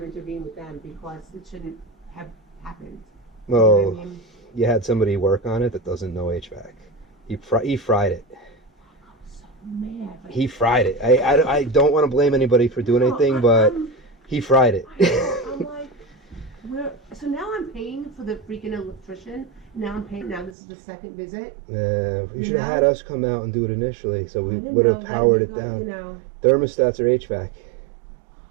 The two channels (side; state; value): left; drops out; at 20.5 s